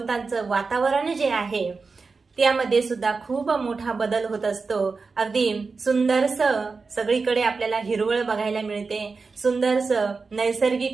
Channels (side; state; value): left; quieter; 4.5 dB